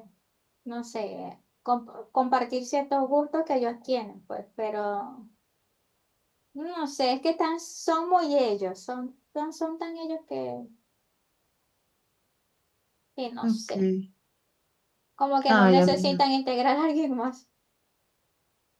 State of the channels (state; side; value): identical; both; correlation 1.00